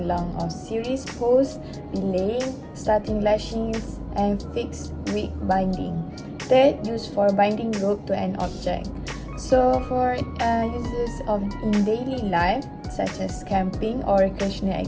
a series posts, belaying, starting lashings, and fixed wig binding. Third, used for binding rope to an object. So for uses of in daily life, such as camping or recreational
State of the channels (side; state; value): both; identical; correlation 1.00